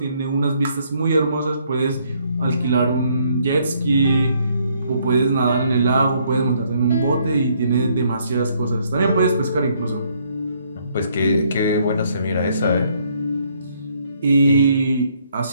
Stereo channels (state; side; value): inverted; both; correlation -0.69